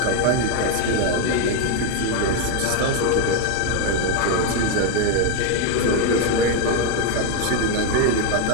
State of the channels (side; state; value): both; different; correlation 0.01